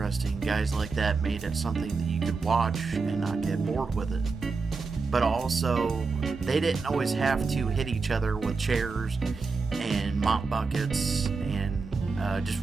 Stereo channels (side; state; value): left; quieter; 4.4 dB